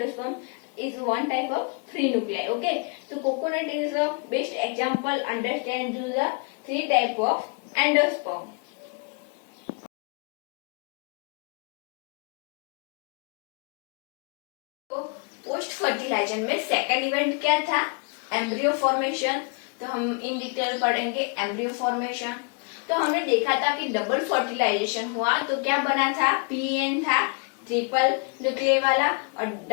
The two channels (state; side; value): quieter; right; 35.8 dB